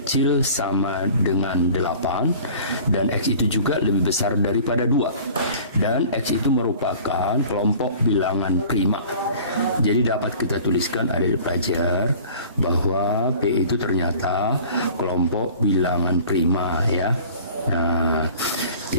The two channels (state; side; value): inverted; both; correlation -0.45